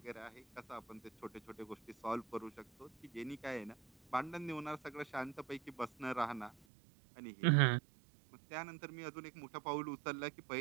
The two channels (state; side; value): drops out; left; at 6.6 s